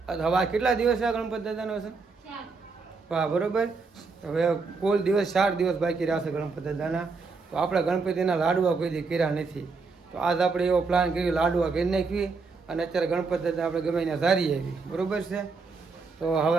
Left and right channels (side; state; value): left; quieter; 4.4 dB